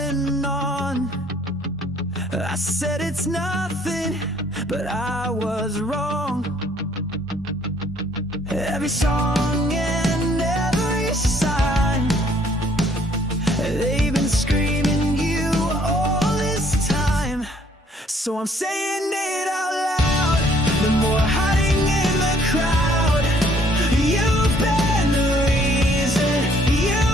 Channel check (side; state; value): both; normal; correlation 0.62